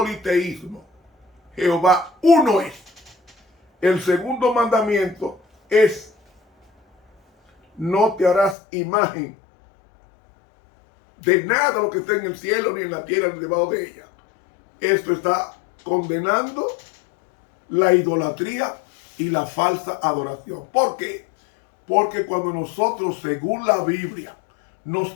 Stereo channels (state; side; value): drops out; right; at 8.6 s